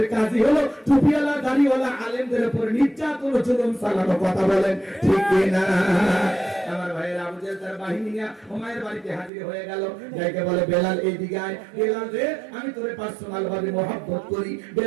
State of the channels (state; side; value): drops out; left; at 9.3 s